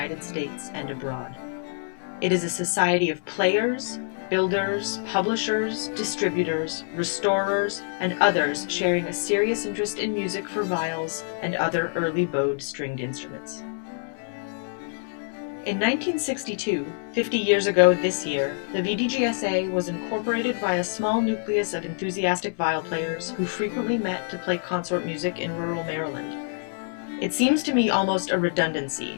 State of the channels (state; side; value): silent; right; 59 dB below the other